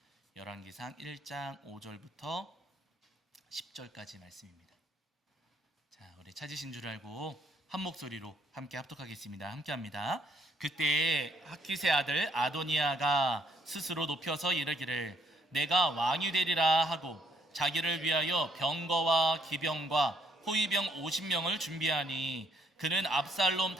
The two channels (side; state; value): both; normal; correlation 0.70